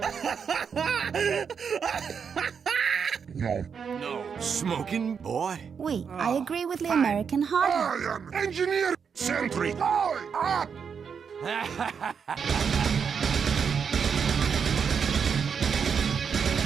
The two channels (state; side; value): quieter; left; 6.6 dB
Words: No. Smoking boy? Oui, I agree with the American hard. I am engineer sentry. I